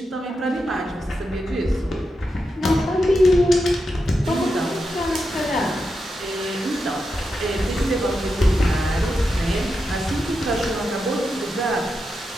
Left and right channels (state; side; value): normal; both; correlation 0.87